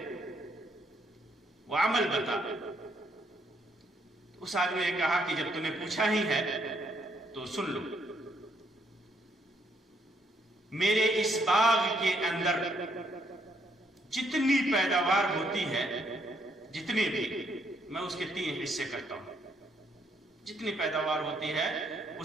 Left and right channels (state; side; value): normal; both; correlation 0.72